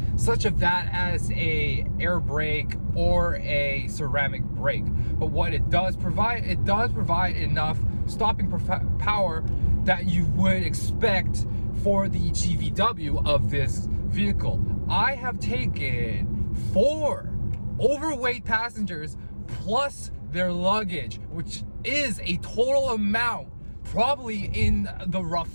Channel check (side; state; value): both; inverted; correlation -1.00